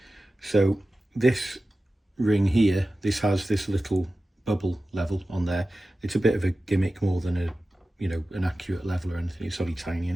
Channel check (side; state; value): both; normal; correlation 0.95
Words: So this ring here, this has this little bubble level on there. It's a bit of a gimmick more than a, you know, an accurate level or anything. It's only tiny